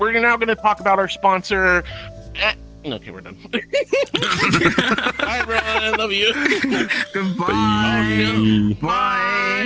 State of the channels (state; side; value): identical; both; correlation 1.00